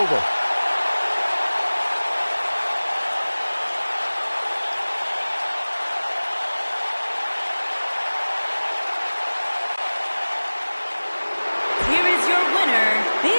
Here is your winner,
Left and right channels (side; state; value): both; inverted; correlation -1.00